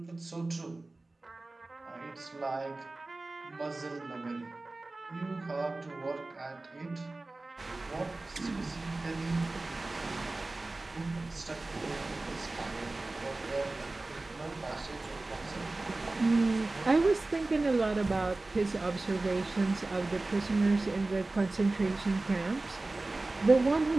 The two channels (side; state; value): left; quieter; 3.1 dB